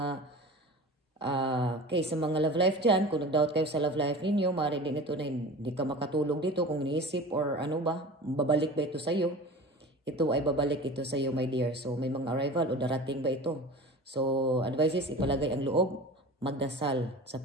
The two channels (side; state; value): both; normal; correlation 0.36